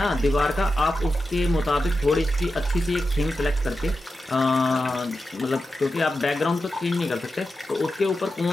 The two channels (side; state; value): both; normal; correlation 0.91